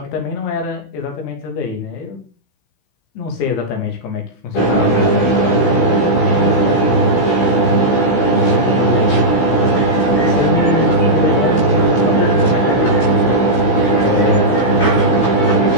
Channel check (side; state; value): right; late; 16 ms